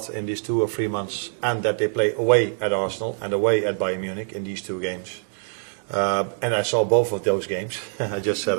in these 2 or 3 months, and that they play away at Arsenal and away at Bayern Munich in these 2 games. And I saw both of those games. I just said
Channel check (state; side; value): silent; left; 60 dB below the other